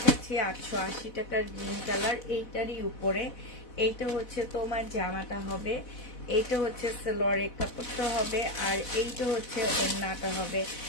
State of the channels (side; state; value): right; late; 4.1 ms